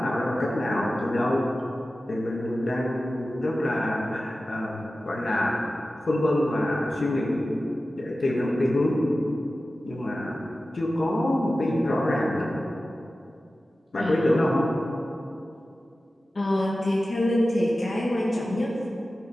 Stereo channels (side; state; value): both; normal; correlation 0.95